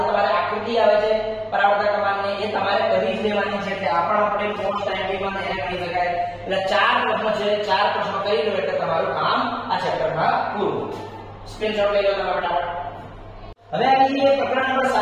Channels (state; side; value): identical; both; correlation 1.00